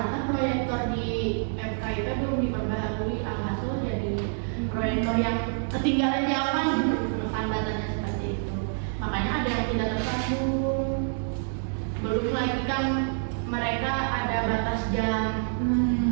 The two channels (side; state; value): left; silent; digital silence